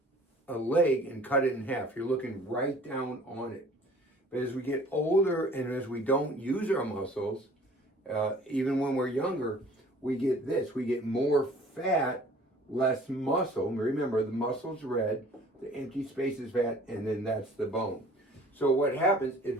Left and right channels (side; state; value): both; normal; correlation 0.51